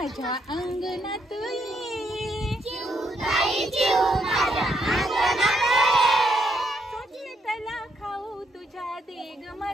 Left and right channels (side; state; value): both; normal; correlation 0.75